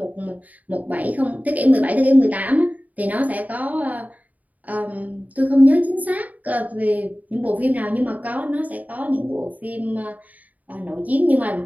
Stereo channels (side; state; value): left; late; 0.075 ms